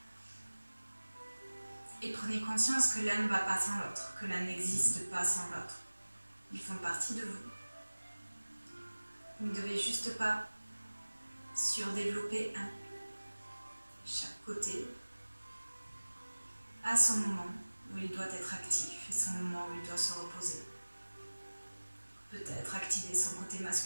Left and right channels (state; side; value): inverted; both; correlation -1.00